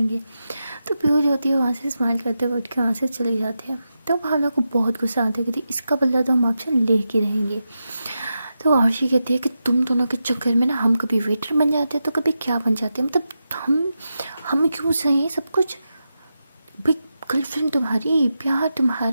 तो पीहू जो होती है वहाँ से स्माइल करते हुए उठ के वहाँ से चली जाती है। तो भावना को बहुत गुस्सा आता है कि इसका बदला तो हम आपसे ले के रहेंगे। तो आरशी कहती है कि तुम दोनों के चक्कर में ना हम कभी वेटर बन जाते हैं तो कभी क्या बन जाते हैं, मतलब हम क्यों सही सब कुछ, भाई गर्लफ्रेंड तुम्हारी, प्यार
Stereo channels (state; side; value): inverted; both; correlation -0.89